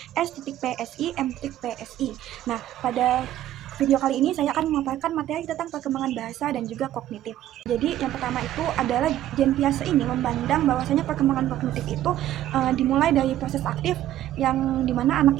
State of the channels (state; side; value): quieter; left; 12.9 dB